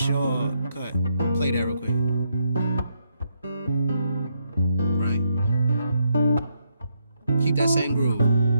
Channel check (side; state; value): both; inverted; correlation -0.78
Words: Play that real quick. Right. Keep that same groove.